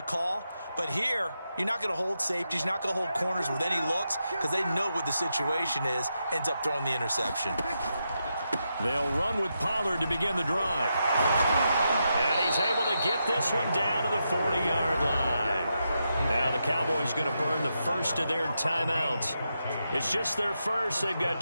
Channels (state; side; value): inverted; both; correlation -0.85